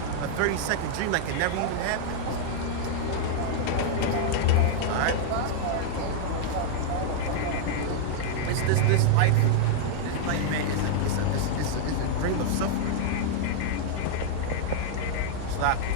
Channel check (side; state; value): both; different; correlation -0.01